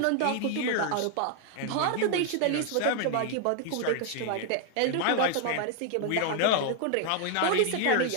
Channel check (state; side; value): different; both; correlation 0.00